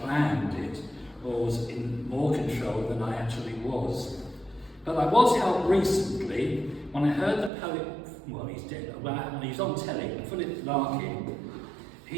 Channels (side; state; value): left; drops out; at 7.5 s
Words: planned it or was in more control than I actually was. But I was helped recently when I heard the poet, well, he's dead, when he was on telly, Philip Larkin.